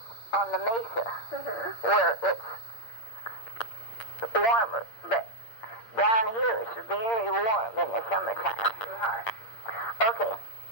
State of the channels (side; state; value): right; late; 8.7 ms